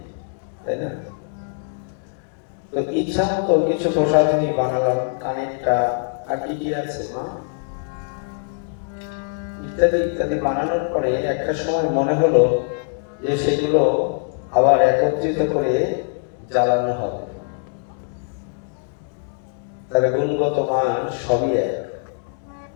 তাই না? তো ইচ্ছা মতো কিছু প্রসাধনী বানালাম, কানেরটা আর কি কি আছে মা ইত্যাদি ইত্যাদি বানানোর পরে একটা সময় মনে হলো যে সেগুলো আবার একত্রিত করে জ্বালানো হবে। তার গুণগত মান সবই এক,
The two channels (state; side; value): silent; right; digital silence